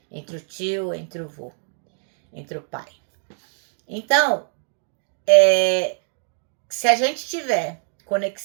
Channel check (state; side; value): silent; left; 63 dB below the other